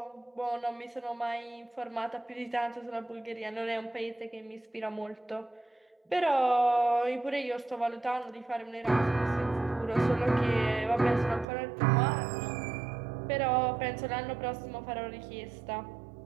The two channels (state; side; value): drops out; left; at 11.5 s